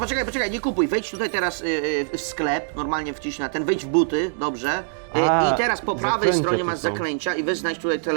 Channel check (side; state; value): left; silent; digital silence